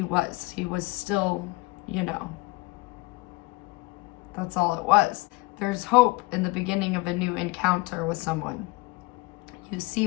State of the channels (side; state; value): right; quieter; 23.4 dB